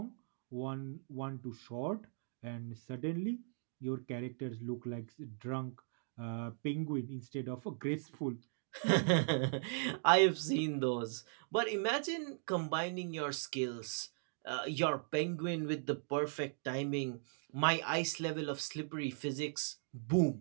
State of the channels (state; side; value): silent; left; digital silence